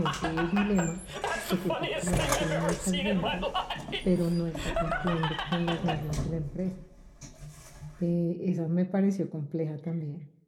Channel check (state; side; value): identical; both; correlation 1.00